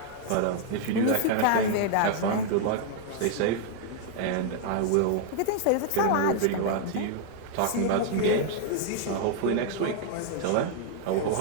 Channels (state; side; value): different; both; correlation 0.00